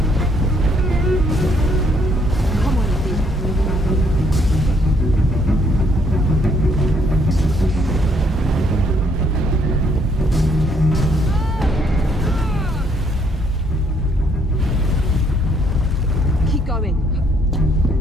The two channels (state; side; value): normal; both; correlation 0.68